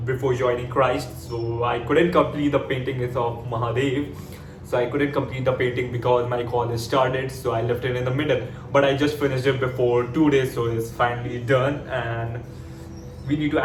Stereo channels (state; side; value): identical; both; correlation 1.00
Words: before joining Christ. So, I couldn't complete the painting. It's of Mahadev. So I couldn't complete the painting because my college started, so I left it in the middle. But I just finished it before 2 days, so it's finally done, and we need to